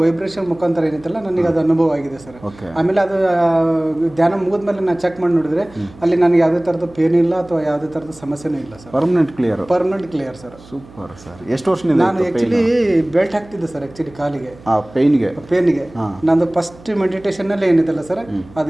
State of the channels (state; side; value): noise; right; hum, 22 dB below the sound